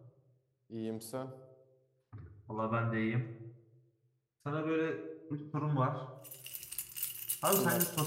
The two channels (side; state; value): both; identical; correlation 1.00